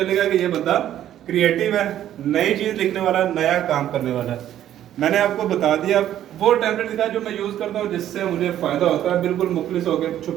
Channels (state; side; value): quieter; left; 11.6 dB